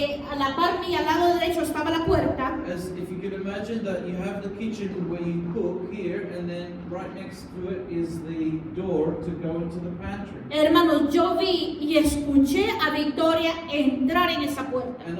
a la par mía, al lado derecho, estaba la puerta. As if you could imagine that you have the kitchen where you cook here, and then right next to it is the door to go into the pantry. Hermanos, yo vi y escuché a Victoria entrar en esa puerta. And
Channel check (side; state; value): both; identical; correlation 1.00